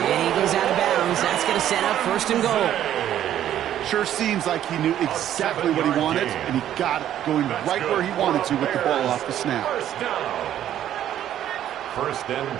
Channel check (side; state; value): left; quieter; 11.3 dB